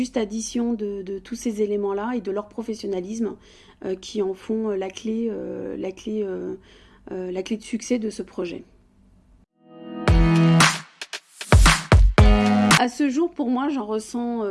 addition de tous ces éléments-là et de leur professionnalisme qui en font la clé de succès de ce projet. À ce jour, pour moi, je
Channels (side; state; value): both; identical; correlation 1.00